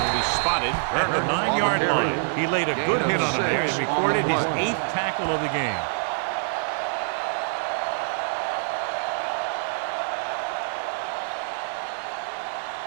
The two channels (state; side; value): silent; left; 55 dB below the other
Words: will be spotted at the 9-yard line. He laid a good hit on him there and recorded his 8th tackle of the game.